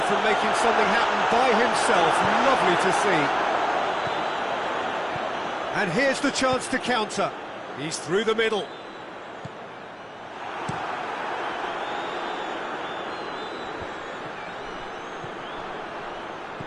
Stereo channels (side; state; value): both; identical; correlation 1.00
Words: from making something happen by himself. Lovely to see. And here's the chance to counter. He's through the middle.